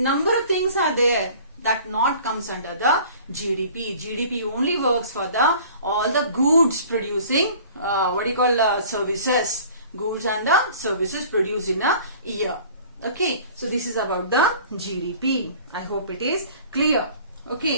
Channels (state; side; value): inverted; both; correlation -0.47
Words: of things are there that not comes under the GDP. GDP only works for the all the goods producing services, goods and the services produced in a year. Okay, so this is about the GDP. I hope it is clear.